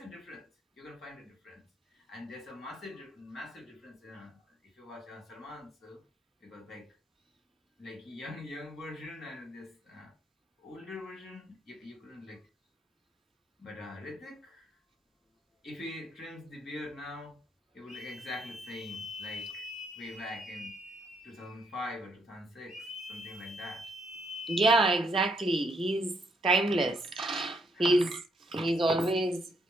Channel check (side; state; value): both; normal; correlation 0.73